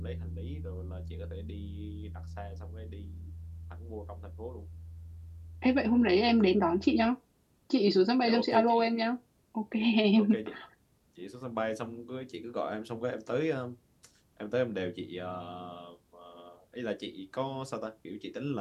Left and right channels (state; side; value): identical; both; correlation 1.00